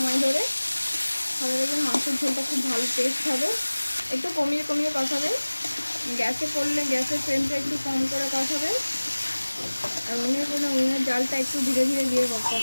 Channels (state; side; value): inverted; both; correlation -1.00